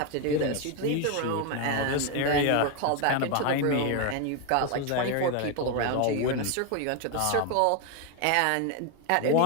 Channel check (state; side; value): different; both; correlation 0.01